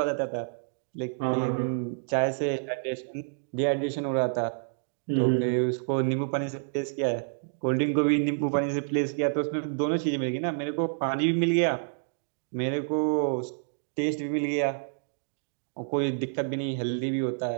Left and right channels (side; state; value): left; silent; digital silence